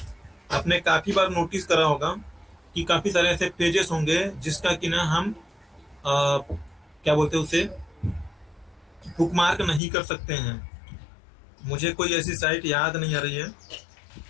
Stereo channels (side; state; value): right; drops out; at 9.8 s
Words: आपने काफी बार नोटिस करा होगा कि काफी सारे ऐसे पेजेस होंगे जिसका कि ना हम क्या बोलते हैं उसे, बुकमार्क नहीं कर सकते हैं। मुझे कोई ऐसी साइट याद नहीं आ रही है।